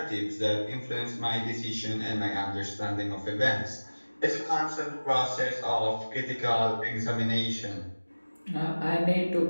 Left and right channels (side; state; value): both; inverted; correlation -1.00